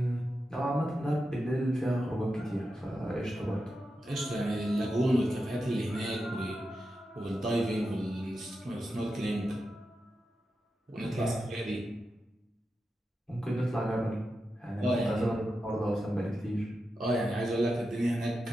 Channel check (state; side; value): normal; both; correlation 0.89